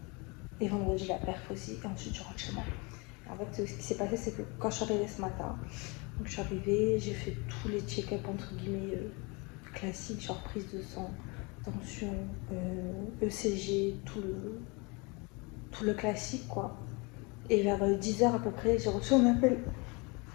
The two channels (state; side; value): quieter; right; 28.9 dB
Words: et vendredi la perf aussi, et ensuite je rentre chez moi. En fait, ce qui s'est passé, c'est que quand je suis arrivée ce matin, donc je suis arrivée, j'ai fait tous les check-up entre guillemets classiques, genre prise de sang, tension, ECG, tout le classique quoi. Et vers 10h à peu près, j'ai reçu un appel